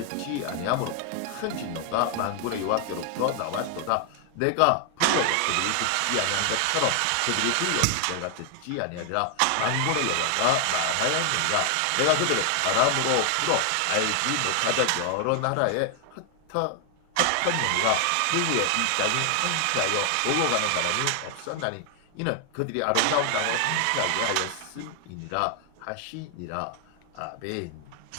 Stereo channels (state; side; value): different; both; correlation 0.00